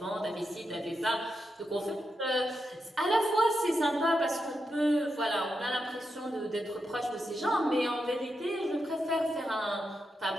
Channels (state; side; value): normal; both; correlation 0.86